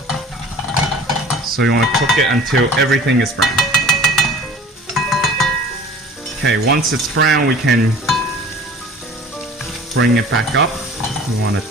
So you want to cook it until everything is brown. Okay, once it's brown, we can bring it back up. We want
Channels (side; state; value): both; normal; correlation 0.45